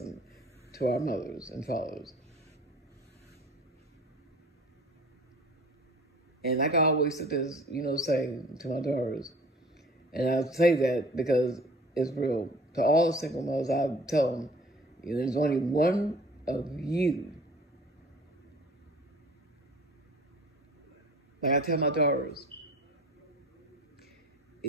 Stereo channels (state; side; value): normal; both; correlation 0.47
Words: to our mothers and fathers. And like I always sit there, you know, saying to my daughters, and I say that because it's real. To all the single mothers, I tell them, you know, there's only one of you. Like I tell my daughters,